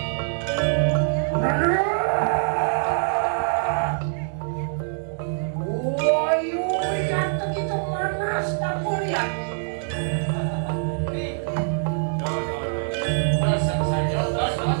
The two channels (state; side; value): silent; left; digital silence